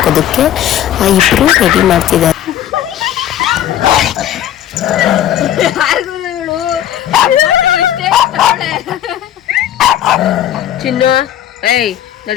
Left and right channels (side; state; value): right; quieter; 11.4 dB